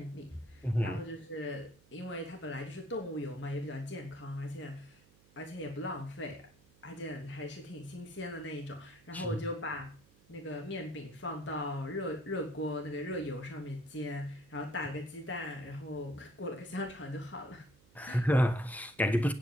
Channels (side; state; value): right; noise; hum, 27 dB below the sound